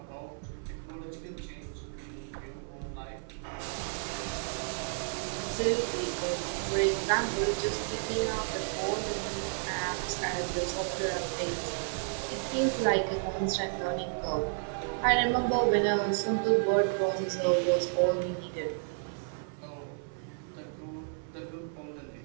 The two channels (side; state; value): left; silent; 56 dB below the other